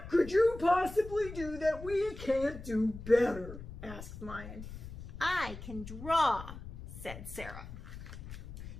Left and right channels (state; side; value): noise; left; rumble, 11 dB below the sound